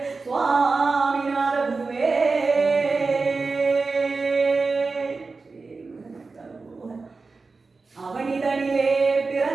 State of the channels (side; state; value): left; quieter; 4.1 dB